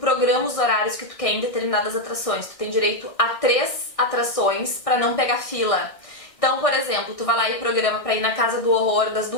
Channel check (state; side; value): late; right; 1.6 ms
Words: os horários que tu quer em determinadas atrações. Tu tem direito a 3 atrações pra não pegar fila. Então, por exemplo, tu vai lá e programa pra ir na Casa do Horror das